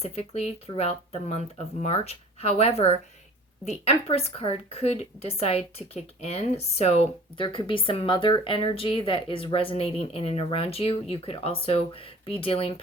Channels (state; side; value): normal; both; correlation 0.46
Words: throughout the month of March. However, the Empress card could decide to kick in. So there could be some mother energy that is resonating in and around you. You could also be dealing